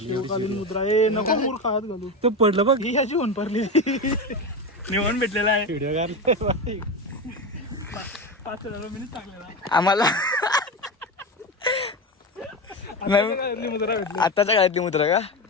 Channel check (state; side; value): normal; both; correlation 0.19